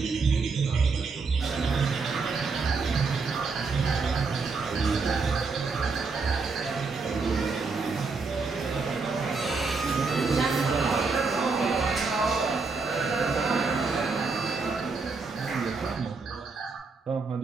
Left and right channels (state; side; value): quieter; left; 4.4 dB